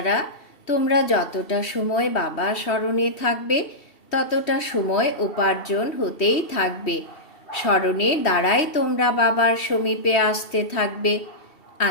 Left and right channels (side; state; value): right; late; 3.1 ms